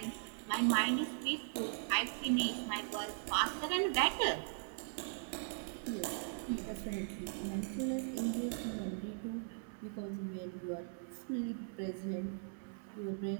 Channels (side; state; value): left; silent; 52 dB below the other